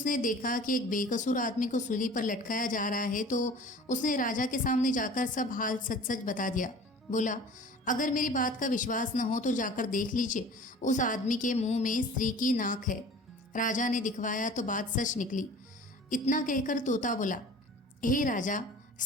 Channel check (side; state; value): both; normal; correlation 0.43